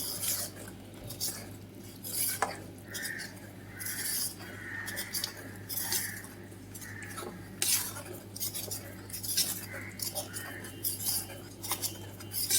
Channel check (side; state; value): both; identical; correlation 1.00